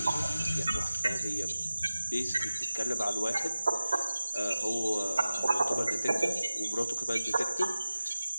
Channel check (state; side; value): inverted; both; correlation -0.95